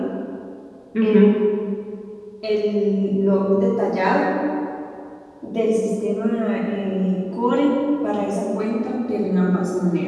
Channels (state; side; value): identical; both; correlation 1.00